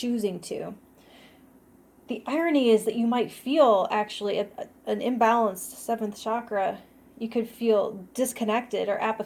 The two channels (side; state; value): both; identical; correlation 1.00